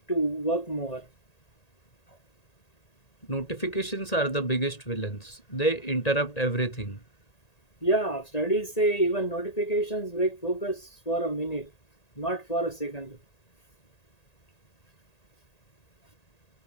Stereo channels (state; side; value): late; right; 1.8 ms